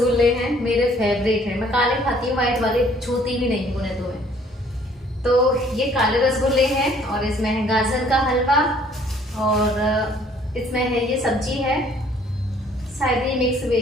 हैं, मेरे फेवरेट हैं। मैं काले खाती हूँ, व्हाइट वाले छूती भी नहीं उन्हें तो मैं। तो ये काले रसगुल्ले हैं और इसमें है गाजर का हलवा और इसमें है ये सब्जी है, शायद ये मिक्स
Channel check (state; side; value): normal; both; correlation 0.59